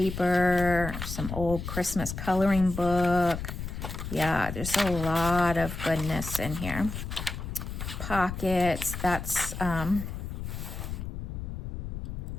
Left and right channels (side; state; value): left; noise; rumble, 6 dB below the sound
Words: some old Christmas coloring book. Yeah, there's a lot of goodness in here. Pockets, that's